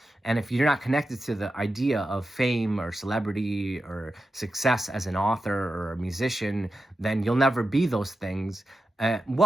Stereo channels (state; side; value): normal; both; correlation 0.90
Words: And if you're not connected to the idea of fame or celebrity or success as an author or a musician, then you'll never be those things.